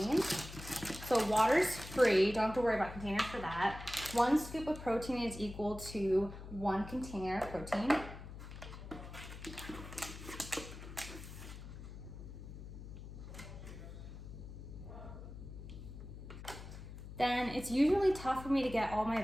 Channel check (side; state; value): left; noise; hum, 12 dB below the sound